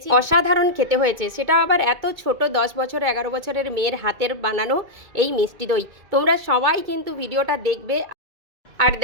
অসাধারণ খেতে হয়েছে, সেটা আবার এত ছোট 10 বছর 11 বছরের মেয়ের হাতের বানানো এই মিষ্টি দই। তোমরা সবাই কিন্তু ভিডিওটা দেখবে। আর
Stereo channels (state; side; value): late; left; 2.2 ms